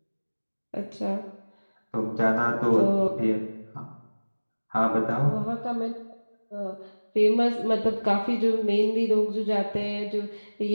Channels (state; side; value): inverted; both; correlation -1.00